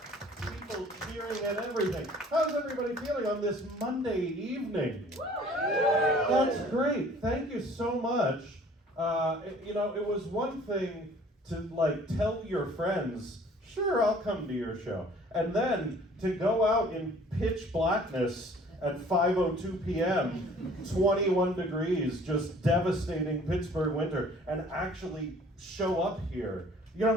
People cheering and everything. How's everybody feeling on this Monday evening? That's great. Thank you so much. It was one thing to tell your friends, sure, I'll come to your show. And then to go out in pitch blackness at 5:02 p.m., 21 degrees, just devastating Pittsburgh winter, and actually show up here. You know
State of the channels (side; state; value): both; normal; correlation 0.53